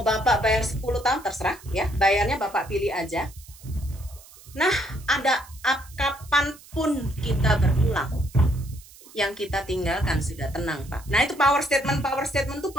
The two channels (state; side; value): noise; right; hiss, 22 dB below the sound